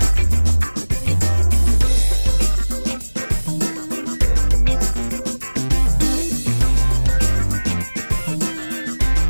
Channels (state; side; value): inverted; both; correlation -1.00